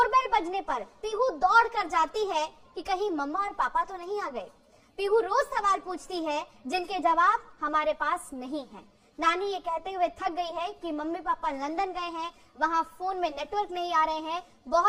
बजने पर पीहू दौड़ कर जाती है कि कहीं मम्मा और पापा तो नहीं आ गए। पीहू रोज सवाल पूछती है जिनके जवाब हमारे पास नहीं है। नानी ये कहते हुए थक गई है कि मम्मी पापा लंदन गए हैं, वहाँ फोन में नेटवर्क नहीं आ रहे हैं,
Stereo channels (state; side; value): identical; both; correlation 1.00